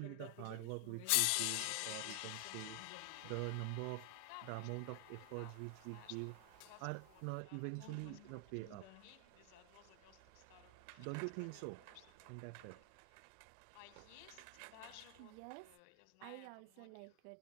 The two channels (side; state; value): both; different; correlation 0.00